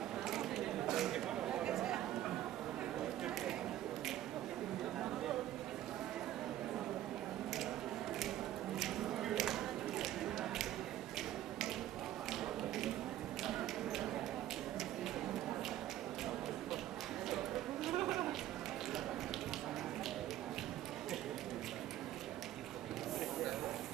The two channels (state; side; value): quieter; left; 13.1 dB